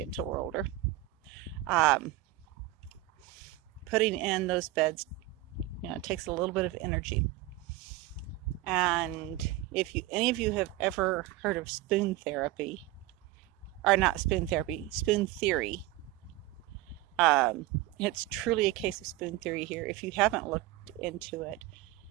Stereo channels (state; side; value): quieter; left; 16.1 dB